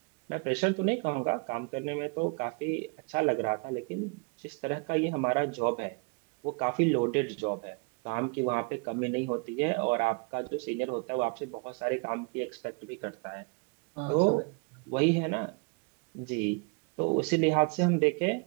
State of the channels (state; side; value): quieter; left; 33.1 dB